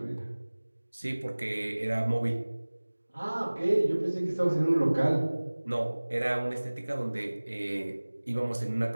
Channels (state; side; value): inverted; both; correlation -1.00